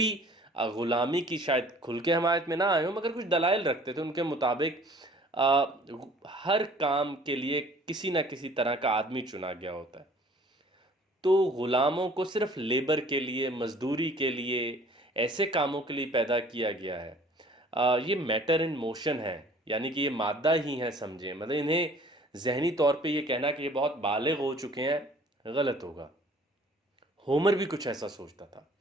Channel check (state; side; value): normal; both; correlation 0.52